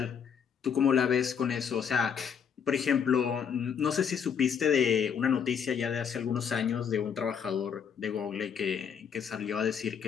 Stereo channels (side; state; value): right; quieter; 7.4 dB